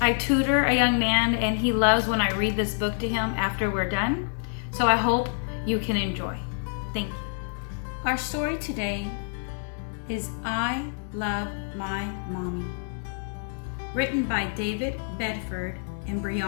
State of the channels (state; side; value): silent; right; digital silence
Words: I tutor a young man, and he loves when I read this book to him after we're done, so I hope you can enjoy. Thank you. Our story today is I Love My Mommy, written by David Bedford and